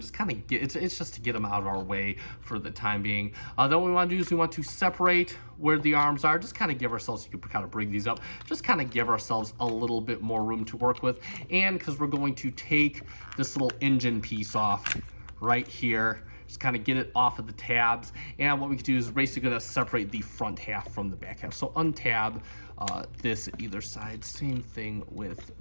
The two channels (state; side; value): inverted; both; correlation -1.00